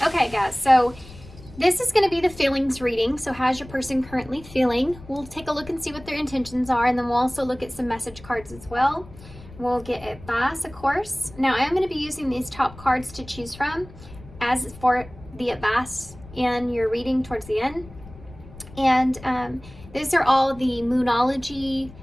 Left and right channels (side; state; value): left; noise; rumble, 19 dB below the sound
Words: Okay guys, so this is going to be the feelings reading. So how's your person currently feeling? We'll take a look and see what their intentions are, and then we'll also look at some message cards as well. We'll get advice, of course. Now I am going to be using these top cards to choose from as for the advice in your reading towards the end. And these are all the Moonology